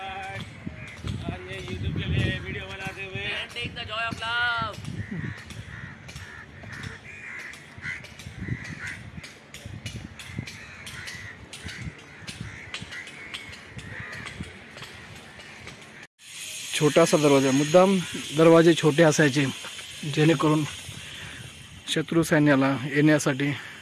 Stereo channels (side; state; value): both; identical; correlation 1.00